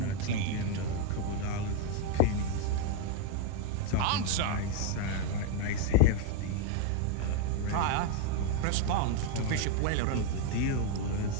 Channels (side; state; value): both; different; correlation 0.01